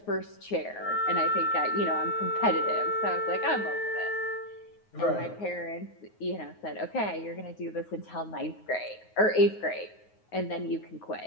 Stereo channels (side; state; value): right; late; 9.5 ms